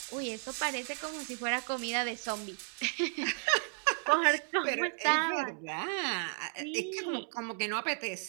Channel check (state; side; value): silent; left; 55 dB below the other